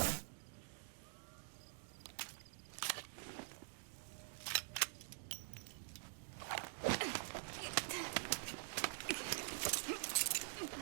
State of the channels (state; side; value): silent; left; digital silence